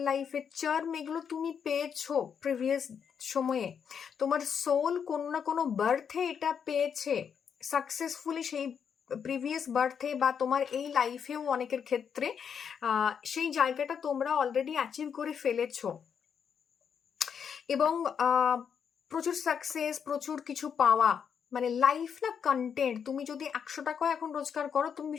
লাইফে চার্ম, এগুলো তুমি পেয়েছো প্রিভিয়াস সময়ে। তোমার সোল কোনো না কোনো বার্থে এটা পেয়েছে সাকসেসফুলি, সেই প্রিভিয়াস বার্থে বা তোমার এই লাইফেও অনেকের ক্ষেত্রে সেই জায়গাটা তোমরা অলরেডি অ্যাচিভ করে ফেলেছো। এবং প্রচুর সাকসেস, প্রচুর কিছু পাওয়া, মানে লাইফ না কন্টেন্ট। তুমি যদি 100 টাকা এখন রোজগার করো, তুমি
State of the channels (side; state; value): right; quieter; 7.3 dB